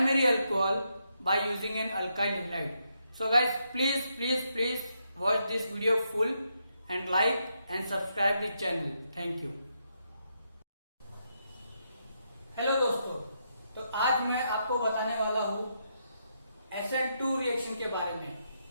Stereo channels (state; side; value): inverted; both; correlation -0.80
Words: alcohol by using an alkyl halide. So guys, please watch this video full and like and subscribe the channel. Thank you. Hello दोस्तों, तो आज मैं आपको बताने वाला हूँ SN2 reaction के बारे में।